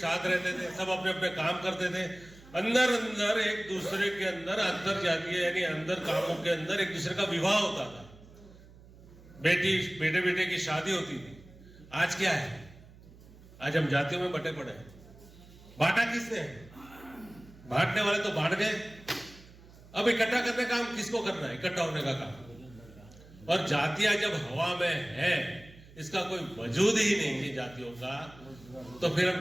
रहते थे, सब अपने अपने काम करते थे। अंदर अंदर एक दूसरे के अंदर अंतर जातीय यानी अंदर कामों के अंदर एक दूसरे का विवाह होता था, बेटे बेटे की शादी होती थी। आज क्या है? आज हम जातियों में बटे पड़े हैं। बांटा किसने? बांटने वाले तो बांट गए। अब इकट्ठा करने का काम किसको करना है? इकट्ठा होने का काम। और जातियां जब हवा में है, इसका कोई वजूद ही नहीं है जातियों का, तो फिर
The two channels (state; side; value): noise; right; hum, 22 dB below the sound